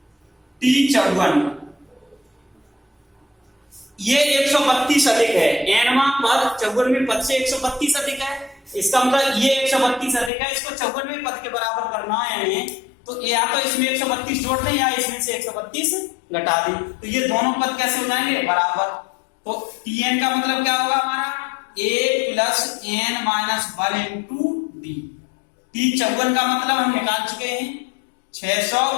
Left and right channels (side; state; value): right; drops out; at 10.3 s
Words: T54 ये 132 अधिक है, nवां पद 54वें पद से 132 अधिक है, इसका मतलब ये 132 अधिक है, इसको 54वें पद के बराबर करना है हमें, तो या तो इसमें 132 जोड़ दें या इसमें से 132 घटा दें, तो ये दोनों पद कैसे हो जाएंगे बराबर। तो Tn का मतलब क्या होगा हमारा, a plus n minus 1 into D. T54 का मतलब हम निकाल चुके हैं